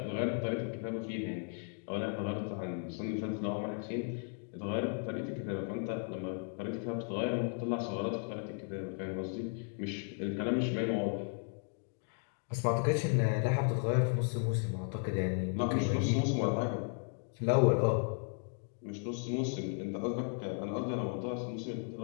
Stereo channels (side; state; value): right; silent; 54 dB below the other